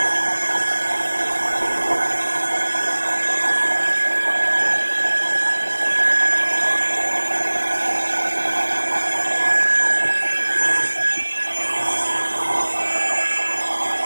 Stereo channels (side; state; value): both; inverted; correlation -1.00